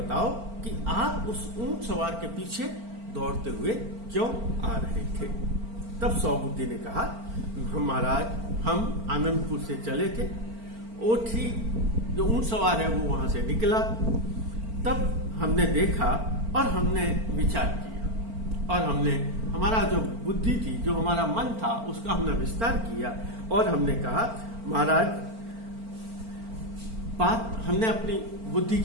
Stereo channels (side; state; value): left; late; 4.4 ms